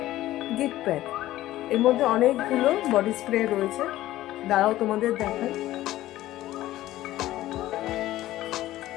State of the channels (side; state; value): right; quieter; 15.1 dB